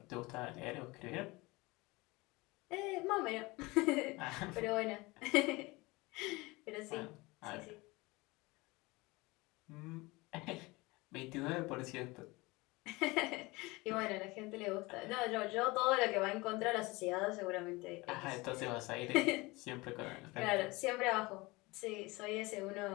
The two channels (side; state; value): right; quieter; 23.2 dB